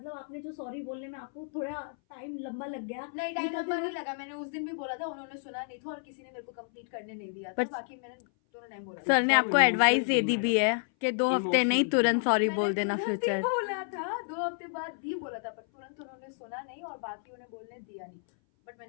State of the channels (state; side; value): silent; right; 57 dB below the other